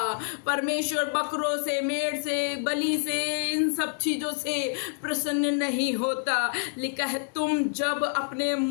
परमेश्वर बकरों से, मेढ़ से, बलि से, इन सब चीजों से प्रसन्न नहीं होता। लिखा है, तुम जब अपने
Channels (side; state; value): right; silent; digital silence